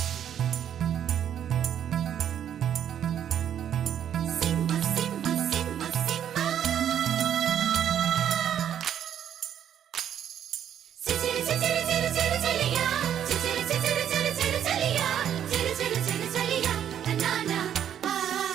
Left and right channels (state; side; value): quieter; left; 9.7 dB